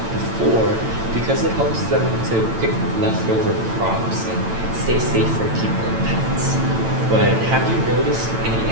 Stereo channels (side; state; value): left; late; 8.9 ms